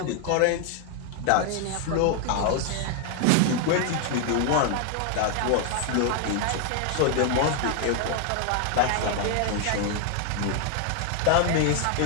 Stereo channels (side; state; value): both; different; correlation 0.00